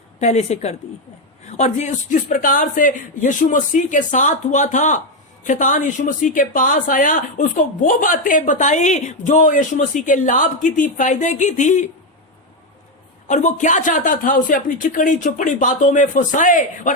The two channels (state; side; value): normal; both; correlation 0.07